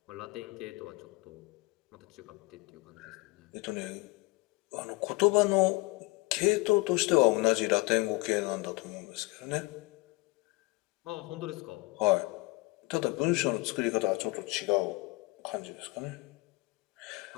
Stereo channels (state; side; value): quieter; right; 25.1 dB